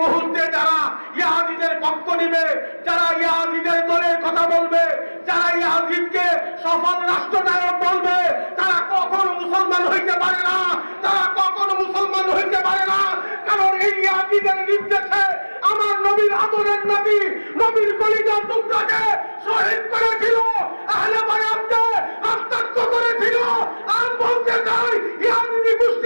মুহূর্তে যারা ইয়াজিদের পক্ষ নিবে, যারা ইয়াজিদের দলের কথা বলবে, যারা ইয়াজিদকে সফল রাষ্ট্রনায়ক বলবে, তারা কখনো মুসলমান হইতে পারে না, তারা কখনো মুসলমান হইতে পারে না। কারণ এই ইয়াজিদের নির্দেশে আমার নবীর আদরের নবী, নবীর কলিজার টুকরাকে শহীদ করেছিল, আহলে বায়াতকে রক্তাক্ত করেছিল। আর বলতে চাই, ইয়াজিদি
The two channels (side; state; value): both; inverted; correlation -1.00